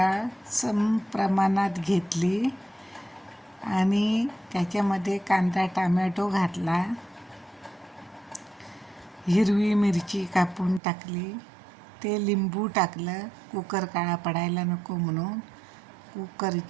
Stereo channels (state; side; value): drops out; left; at 10.8 s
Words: सम प्रमाणात घेतली आणि त्याच्यामध्ये कांदा टमॅटो घातला. हिरवी मिरची कापून टाकली. ते लिंबू टाकलं, कुकर काळा पडायला नको म्हणून.